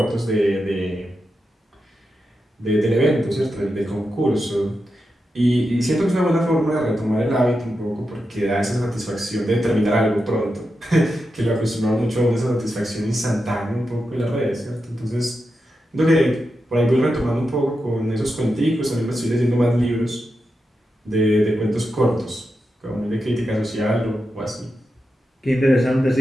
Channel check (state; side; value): normal; both; correlation 0.88